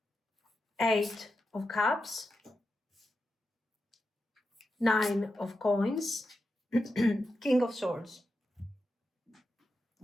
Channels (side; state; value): both; normal; correlation 0.88